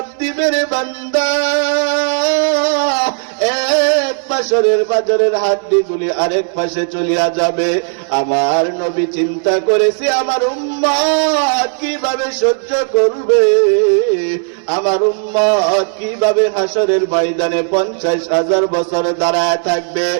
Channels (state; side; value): silent; left; 57 dB below the other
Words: দিবে রে বান্দা, এক পাশের বাজারের হাড্ডিগুলি আরেক পাশে চলিয়া যাবে। আমার নবী চিন্তা করেছে আমার উম্মত কিভাবে সহ্য করবে, আমার উম্মত কিভাবে হাসরের ময়দানে 50,000 বছর দাঁড়ায় থাকবে।